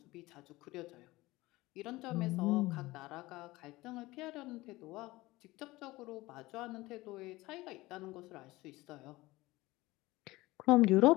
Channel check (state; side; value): quieter; right; 19.7 dB